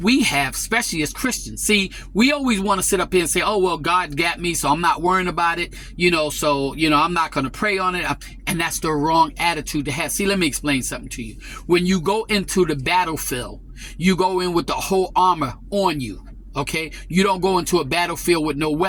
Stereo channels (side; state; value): both; identical; correlation 1.00